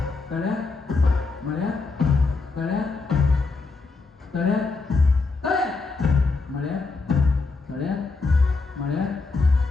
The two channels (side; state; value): right; quieter; 4.0 dB